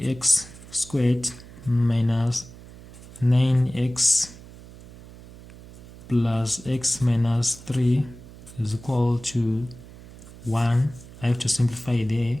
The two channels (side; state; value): right; noise; hum, 18 dB below the sound